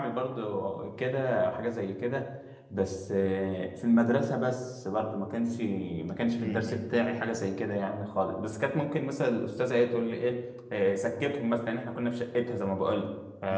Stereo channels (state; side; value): identical; both; correlation 1.00